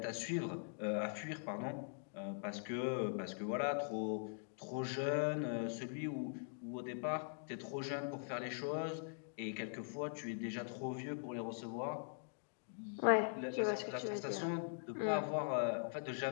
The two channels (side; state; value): right; silent; digital silence